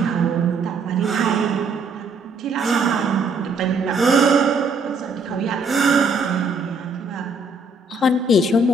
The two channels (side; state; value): left; quieter; 3.4 dB